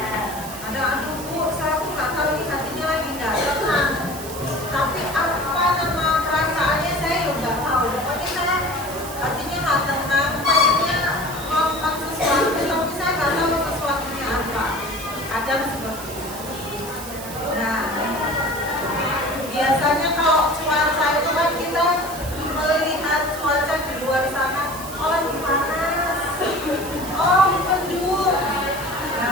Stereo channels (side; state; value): right; noise; hiss, 12 dB below the sound